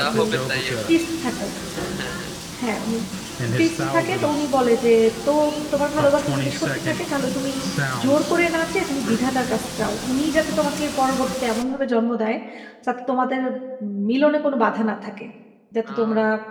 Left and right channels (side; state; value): both; identical; correlation 1.00